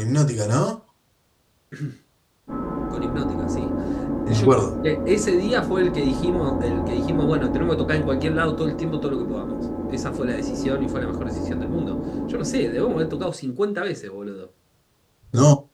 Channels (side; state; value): both; identical; correlation 1.00